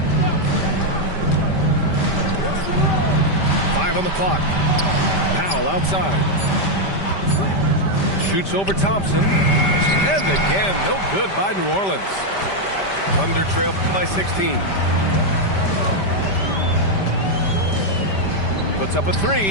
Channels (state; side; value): late; right; 5.1 ms